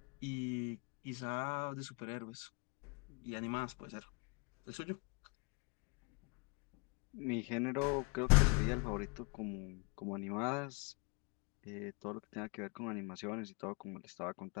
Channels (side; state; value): right; quieter; 30.2 dB